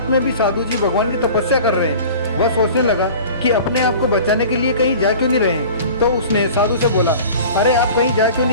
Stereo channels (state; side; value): inverted; both; correlation -0.41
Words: में भी साधु जी भगवान की तपस्या कर रहे हैं। वह सोचने लगा कि अपने आप को बचाने के लिए कहीं जा क्यों नहीं रहे हैं। तो उसने साधु से बोला, अरे आप कहीं जा क्यों